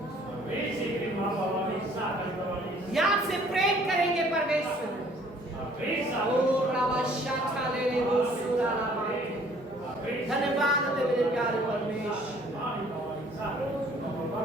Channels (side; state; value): both; normal; correlation 0.57